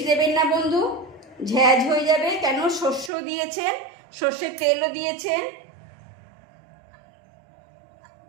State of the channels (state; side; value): drops out; left; at 3.1 s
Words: দেবেন না বন্ধু, ঝ্যাঁঝ হয়ে যাবে, কেন শস্য দিয়েছেন, সর্ষের তেলও দিয়েছেন।